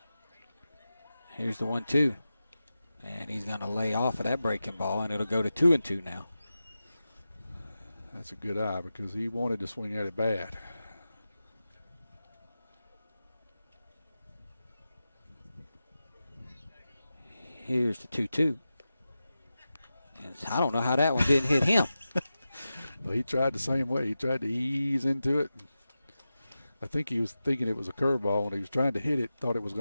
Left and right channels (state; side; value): inverted; both; correlation -0.93